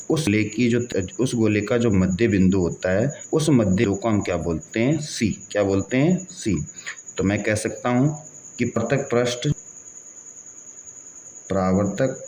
उस गोले का जो मध्य बिंदु होता है, उस मध्य बिंदु को हम क्या बोलते हैं? C। क्या बोलते हैं? C। तो मैं कह सकता हूँ कि परावर्तक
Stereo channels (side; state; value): both; identical; correlation 1.00